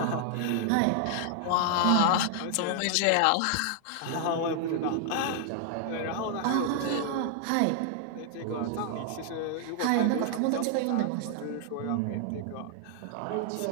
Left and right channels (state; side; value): different; both; correlation 0.00